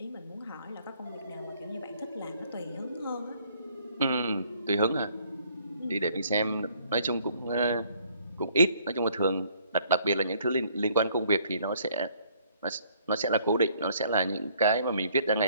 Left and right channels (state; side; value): inverted; both; correlation -0.63